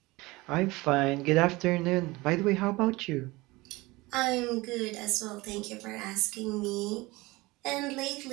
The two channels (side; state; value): left; quieter; 21.8 dB